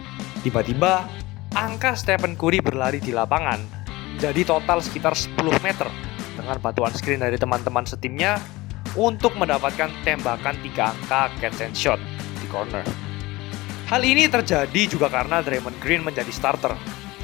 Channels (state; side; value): quieter; right; 20.5 dB